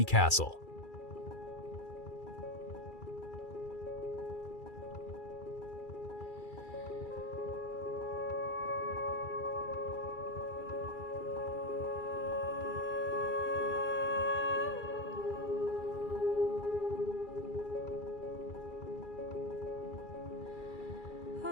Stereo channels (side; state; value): right; late; 2.4 ms